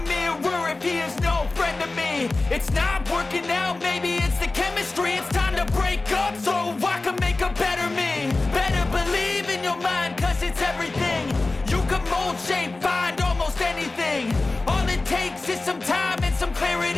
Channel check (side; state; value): right; quieter; 3.3 dB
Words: if he is no friend to me. It's not working out, maybe it's the chemistry. It's time to break up so I can make a better me. Better believe in your mind, cause it's everything. You can mold, shape, find almost anything. All it takes is some time and some